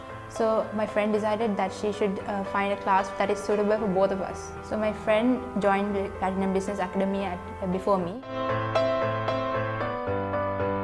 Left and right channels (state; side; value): identical; both; correlation 1.00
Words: So my friend decided that she should find a class that is suitable for both of us. So my friend joined the Platinum Business Academy before me.